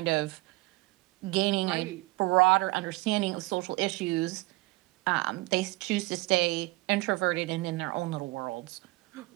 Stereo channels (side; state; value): left; quieter; 22.0 dB